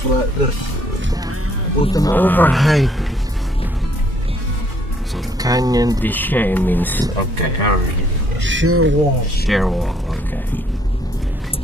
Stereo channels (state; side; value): normal; both; correlation 0.66